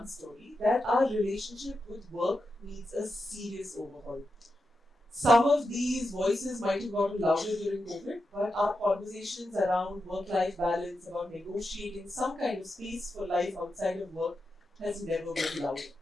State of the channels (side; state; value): both; normal; correlation 0.88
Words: story, that our relationship with work needs a serious overhaul. Some of these voices might have gotten louder during COVID, but our conversations around work-life balance, about negotiating some kind of space for life outside of work has never been louder.